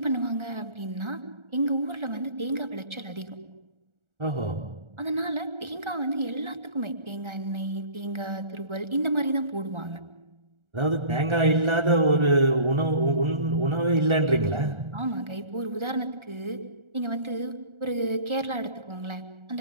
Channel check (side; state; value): left; late; 1.4 ms